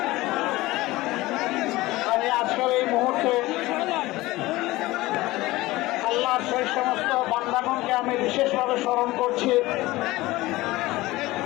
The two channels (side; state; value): right; quieter; 19.0 dB